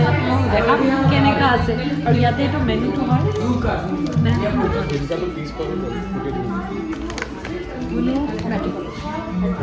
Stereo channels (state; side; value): identical; both; correlation 1.00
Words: আপোনালোকক দেখাম কেনেকুৱা আছে আৰু ইয়াতে এইটো মেনুটো হয়